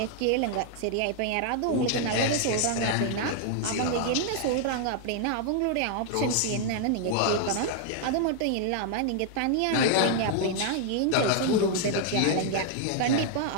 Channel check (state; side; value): different; both; correlation 0.00